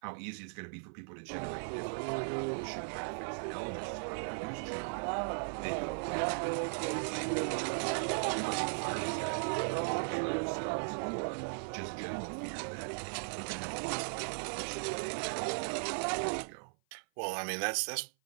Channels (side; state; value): left; silent; 53 dB below the other